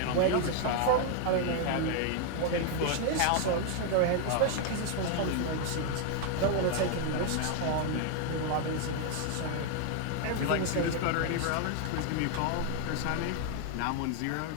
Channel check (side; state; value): both; different; correlation 0.00